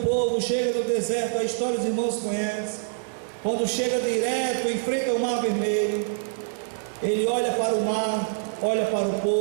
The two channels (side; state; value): left; silent; digital silence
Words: chega no deserto, a história dos irmãos conhecem. Quando chega direto, enfrenta o mar vermelho, ele olha para o mar, olha para o